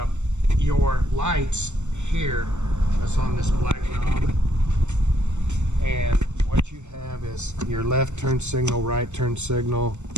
Your lights here, that's on this black knob, and what you have is your left turn signal, right turn signal,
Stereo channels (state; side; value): late; left; 0.84 ms